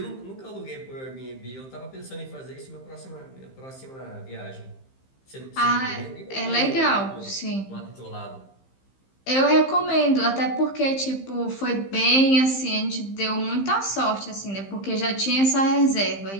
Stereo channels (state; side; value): late; right; 15 ms